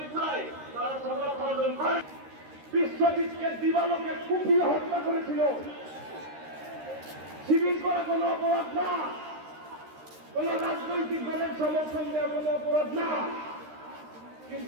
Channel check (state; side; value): late; left; 13 ms